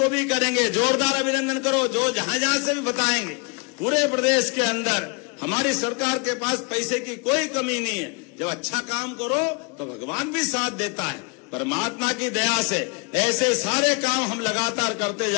भी करेंगे। जोरदार अभिनंदन करो जो जहां जहां से भी बताएंगे। पूरे प्रदेश के अंदर हमारी सरकार के पास पैसे की कोई कमी नहीं है। जब अच्छा काम करो तो भगवान भी साथ देता है। परमात्मा की दया से ऐसे सारे काम हम लगातार करते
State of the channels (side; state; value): right; quieter; 33.3 dB